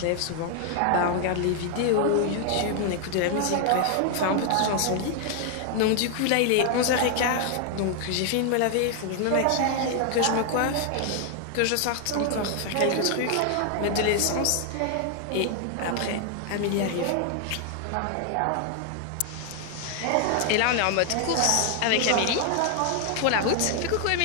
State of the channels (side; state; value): both; different; correlation 0.00